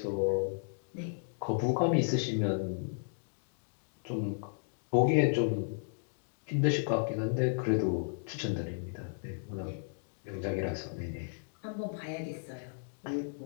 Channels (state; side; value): silent; right; digital silence